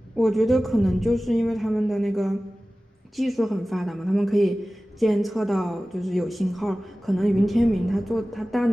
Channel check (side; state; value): both; normal; correlation 0.97